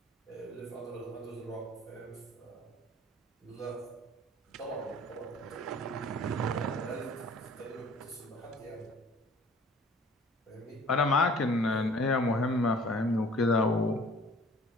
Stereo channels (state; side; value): normal; both; correlation 0.50